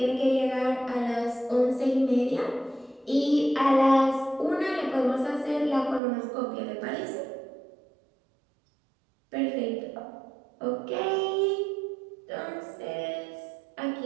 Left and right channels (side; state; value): left; drops out; at 6.0 s